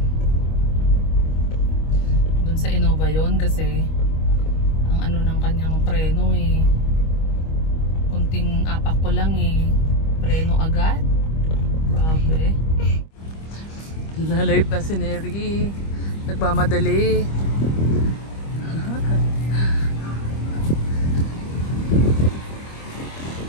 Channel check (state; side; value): late; right; 25 ms